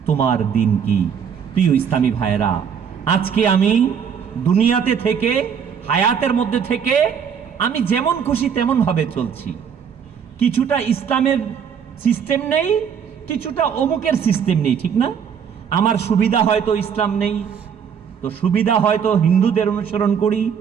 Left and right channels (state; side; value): quieter; left; 7.4 dB